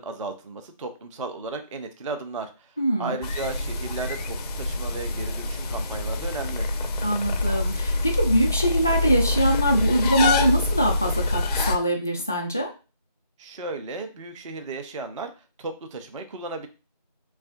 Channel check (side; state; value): both; inverted; correlation -0.70